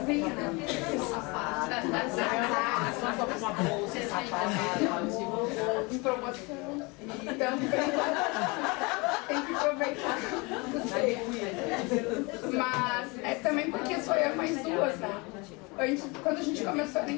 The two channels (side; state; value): right; quieter; 27.4 dB